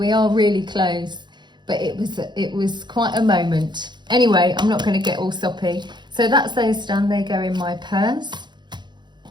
are really close, but it was quite a moment. Anyway, I'm not going to get all soppy. So that's those done. They go in my purse.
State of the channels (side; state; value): left; late; 0.21 ms